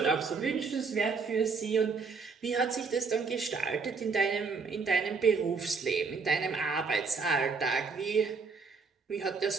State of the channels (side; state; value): left; quieter; 4.8 dB